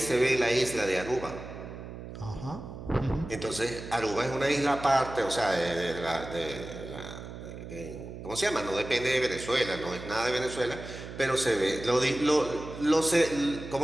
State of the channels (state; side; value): noise; right; hum, 11 dB below the sound